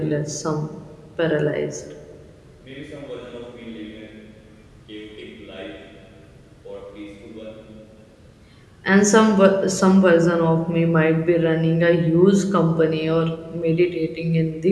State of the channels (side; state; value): both; identical; correlation 1.00